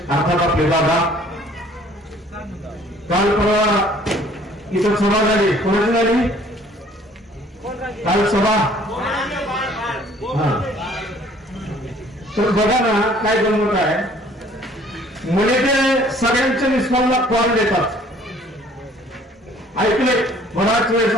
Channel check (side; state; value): both; normal; correlation 0.56